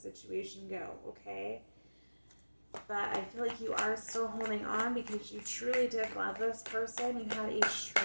go, okay? But I feel like you are still holding on because you truly did love this person. You had a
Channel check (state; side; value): inverted; both; correlation -1.00